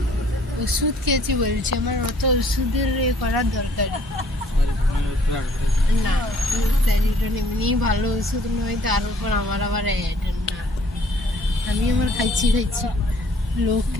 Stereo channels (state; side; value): normal; both; correlation 0.59